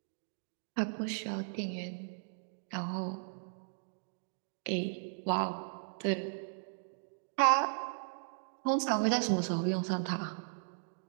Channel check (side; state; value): left; silent; digital silence